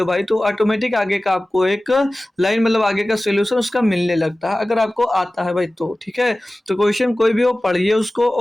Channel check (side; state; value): both; normal; correlation 0.97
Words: भाई, तो ऑटोमेटिक आगे का आपको एक लाइन मतलब आगे का सोल्यूशन उसका मिलने लगता है, अगर आपको आता है भाई तो। ठीक है, तो क्वेश्चन कोई भी हो पढ़िए उसको